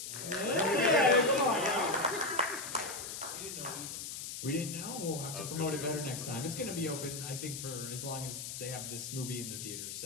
We didn't know. We'll have to promote it better next time. It's going to be open, I think, for as long as they have this movie in the theater.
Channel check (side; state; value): left; noise; hiss, 7 dB below the sound